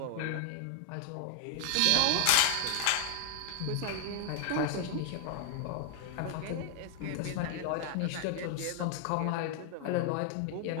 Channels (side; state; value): both; different; correlation 0.00